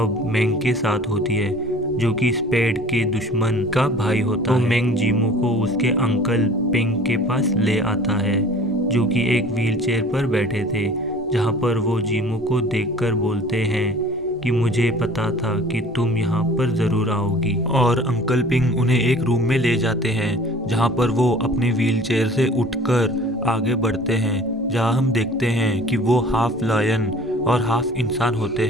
मेंग के साथ होती है जो कि स्पेड के दुश्मन का भाई होता है। तो मेंग जीमो को उसके अंकल पिंग के पास ले आता है जो कि एक व्हीलचेयर पर बैठे थे, जहां पर वो जीमो को देखकर बोलते हैं कि मुझे पता था कि तुम यहाँ पर ज़रूर आओगी। और अंकल पिंग उन्हें एक रूम में ले जाते हैं जहाँ पर वो अपने व्हीलचेयर से उठकर आगे बढ़ते हैं, जहाँ हम देखते हैं कि वो हाफ लायन और हाफ इंसान होते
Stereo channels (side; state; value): both; normal; correlation 0.46